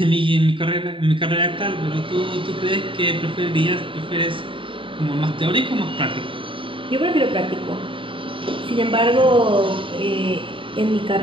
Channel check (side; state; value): left; late; 0.25 ms